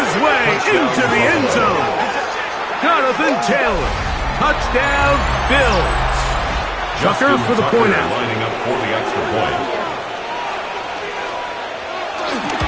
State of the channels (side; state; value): both; identical; correlation 1.00